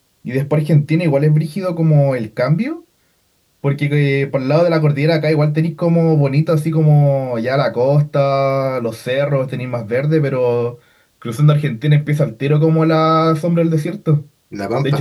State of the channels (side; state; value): both; identical; correlation 1.00